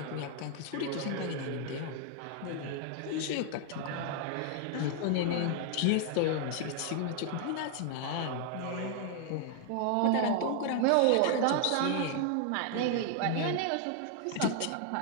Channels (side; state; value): both; different; correlation 0.00